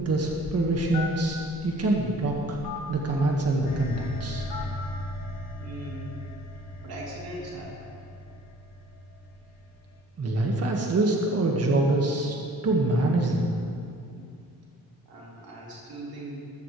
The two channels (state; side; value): normal; both; correlation 0.54